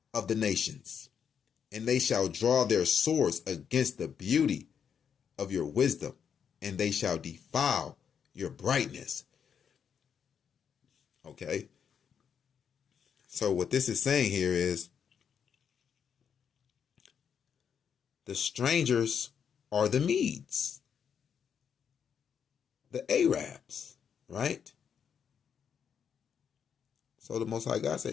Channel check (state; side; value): quieter; right; 7.5 dB